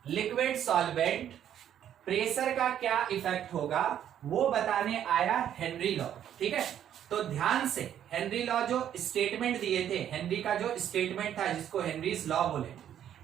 liquid solvent, pressure का क्या इफेक्ट होगा वो बताने आया हेनरी लॉ, ठीक है। तो ध्यान से हेनरी लॉ जो स्टेटमेंट दिए थे, हेनरी का जो स्टेटमेंट था जिसको हेनरीज लॉ बोले,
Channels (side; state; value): left; quieter; 10.2 dB